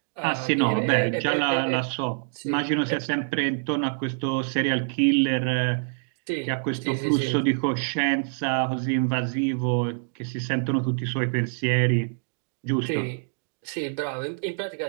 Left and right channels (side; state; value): left; silent; 60 dB below the other